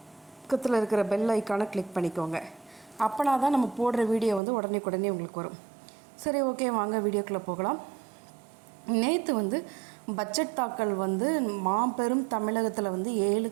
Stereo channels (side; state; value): left; drops out; at 4.4 s